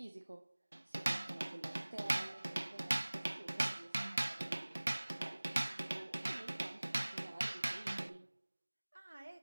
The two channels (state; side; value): inverted; both; correlation -1.00